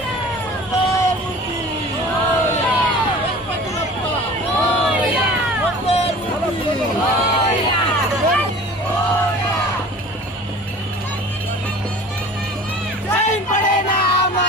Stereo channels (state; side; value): normal; both; correlation 0.43